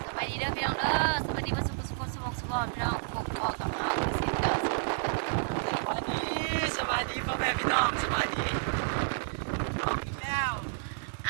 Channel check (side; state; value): left; silent; digital silence